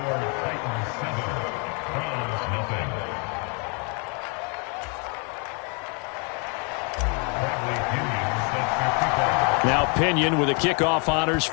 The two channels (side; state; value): right; quieter; 36.3 dB